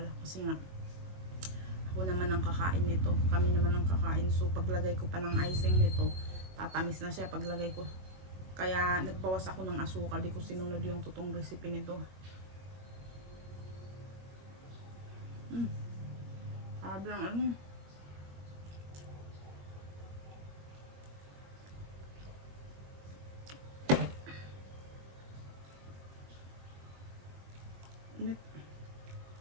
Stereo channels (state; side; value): late; left; 21 ms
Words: Kasi nga, ako naman ang kakain nito. Kami naman ang kakain. So, paglagay ko pa ng icing nito, tatamis na siya paglagay ko. Kaya, nagbawas ako ng asukal. Di ko sinunod yung totoong recipe nito. Sabi lang, init.